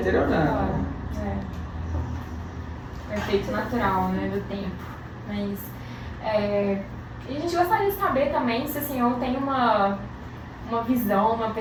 É efeito natural, né, do tempo. Mas a gente gostaria de saber também se o senhor tem uma visão, uma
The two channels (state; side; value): identical; both; correlation 1.00